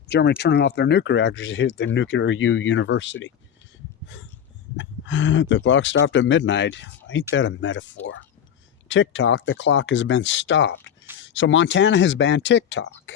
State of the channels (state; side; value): quieter; right; 8.8 dB